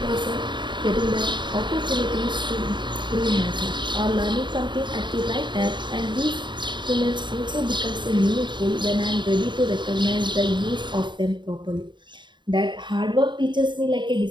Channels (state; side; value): late; left; 0.22 ms